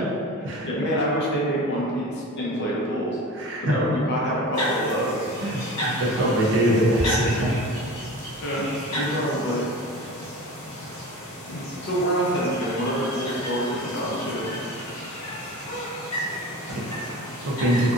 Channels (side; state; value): both; normal; correlation 0.35